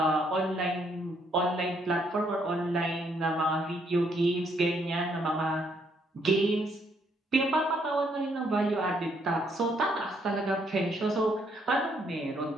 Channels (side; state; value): both; normal; correlation 0.71